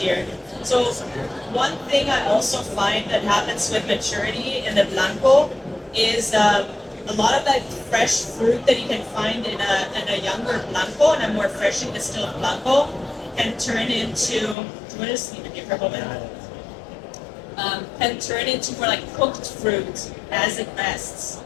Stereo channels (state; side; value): drops out; right; at 14.6 s